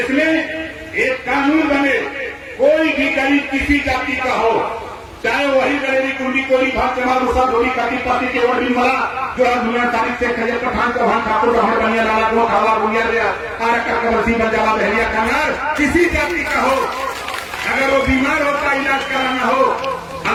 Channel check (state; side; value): identical; both; correlation 1.00